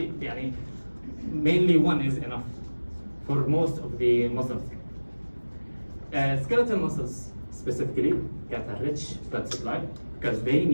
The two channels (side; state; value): both; inverted; correlation -1.00